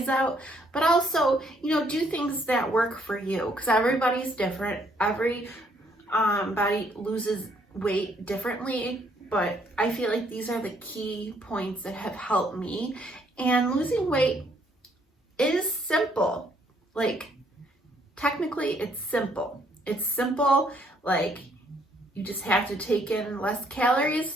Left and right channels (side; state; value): both; normal; correlation 0.68